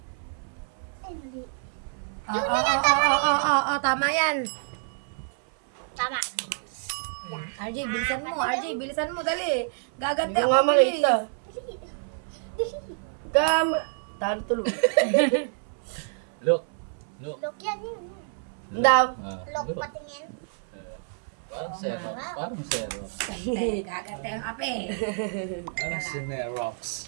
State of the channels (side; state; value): left; silent; 58 dB below the other